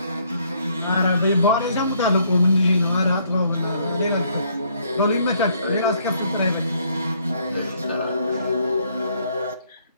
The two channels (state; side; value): inverted; both; correlation -0.67